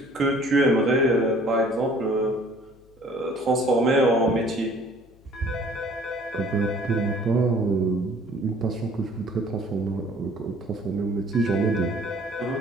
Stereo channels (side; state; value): left; noise; hum, 28 dB below the sound